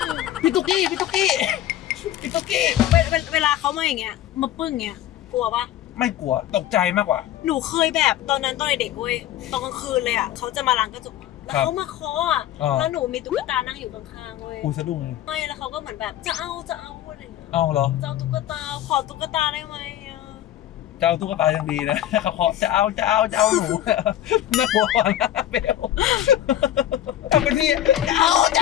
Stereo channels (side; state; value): right; quieter; 12.4 dB